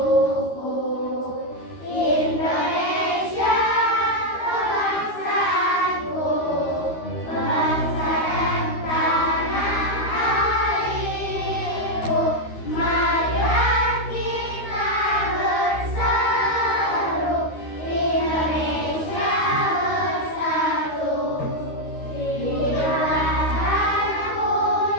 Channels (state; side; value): late; right; 13 ms